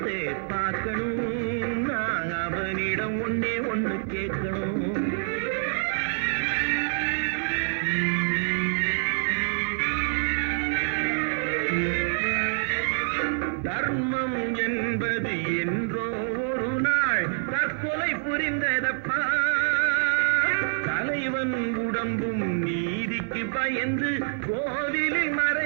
பார்க்கணும், நான் அவனிடம் ஒன்னே ஒண்ணு கேட்கணும். தர்மம் என்பது என்றோ ஒரு நாள் தற்கொலை புரிந்ததப்பா. தலைவன் உடம்பும் நீதிக்கு பயந்து கோவிலில்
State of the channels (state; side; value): silent; left; digital silence